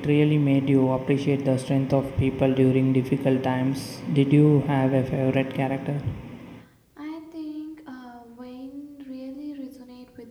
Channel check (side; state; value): both; identical; correlation 1.00